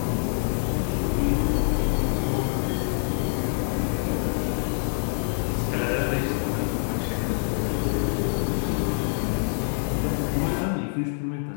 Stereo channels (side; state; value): right; silent; digital silence